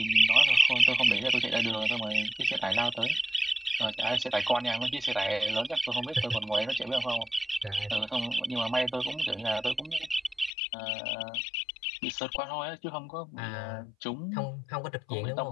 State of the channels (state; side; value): drops out; right; at 10.5 s